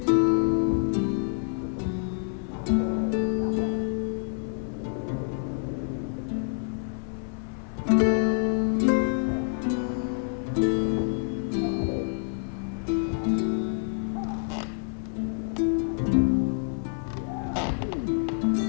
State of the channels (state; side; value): silent; right; 57 dB below the other